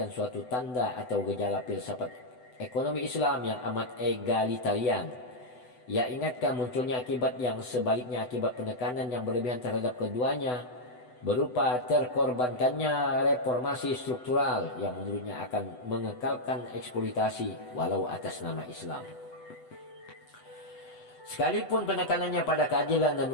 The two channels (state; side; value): late; right; 8.0 ms